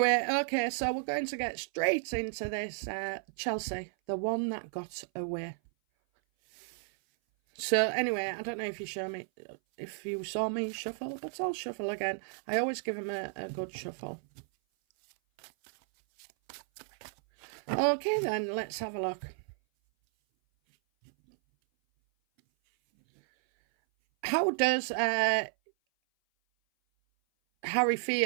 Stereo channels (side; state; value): left; silent; 56 dB below the other